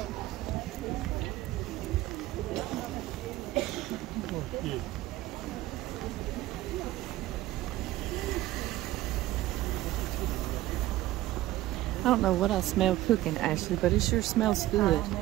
I don't know what I smell cooking, Ashley, but it sure smells good. I know,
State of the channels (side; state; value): left; quieter; 16.0 dB